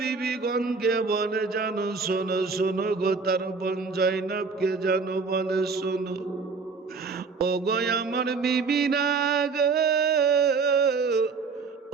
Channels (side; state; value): left; quieter; 4.7 dB